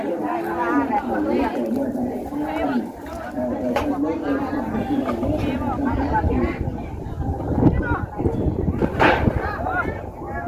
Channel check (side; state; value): both; identical; correlation 1.00